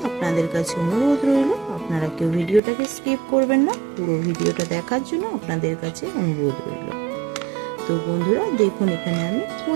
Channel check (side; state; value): left; drops out; at 2.6 s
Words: আপনাদের কাছে অনুরোধ রইল, আপনারা কেউ ভিডিওটাকে স্কিপ করবেন না, পুরো ভিডিওটা দেখার জন্য আপনাদের কাছে অনুরোধ রইল। তো বন্ধুরা দেখুন, এখানে আমি